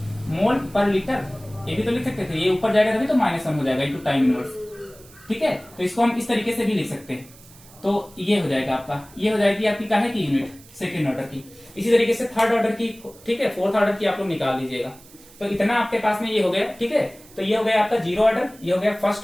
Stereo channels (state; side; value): noise; right; hiss, 23 dB below the sound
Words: मोल पर लीटर, ये भी तो लिख सकते थे, ये ऊपर जाएगा तभी तो -1 हो जाएगा इंटू टाइम इनवर्स, ठीक है। तो इसको हम इस तरीके से भी लिख सकते हैं, तो ये हो जाएगा आपका, ये हो जाएगी आपकी काहे की यूनिट, सेकंड ऑर्डर की। इसी तरीके से थर्ड ऑर्डर की, ठीक है, फोर्थ ऑर्डर की आप लोग निकाल लीजिएगा। तो इतना आपके पास में ये हो गया, ठीक है। तो ये हो गया आपका 0 ऑर्डर, ये हो गया